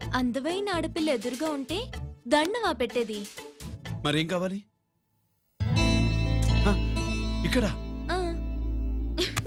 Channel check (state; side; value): identical; both; correlation 1.00